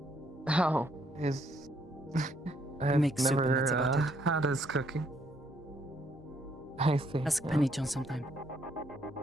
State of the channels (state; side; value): normal; both; correlation 0.70